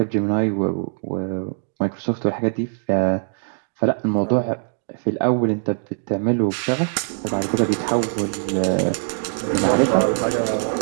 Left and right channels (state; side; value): silent; left; digital silence